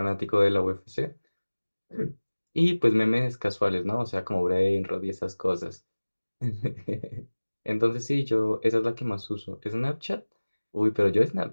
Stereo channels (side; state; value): both; inverted; correlation -1.00